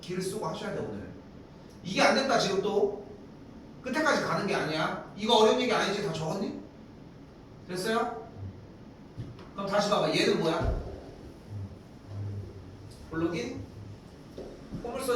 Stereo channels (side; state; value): both; identical; correlation 1.00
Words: 쓰고 하셔야 돼 오늘. 이게 안 됐다 지금 또. 끝에까지 가는 게 아니야. 이거 어려운 얘기 아니지? 다 적었니? 됐어요? 그럼 다시 봐봐. 얘는 뭐야? 볼록인?